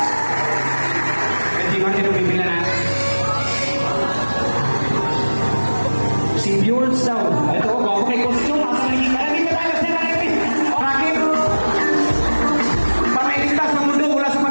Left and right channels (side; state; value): both; inverted; correlation -1.00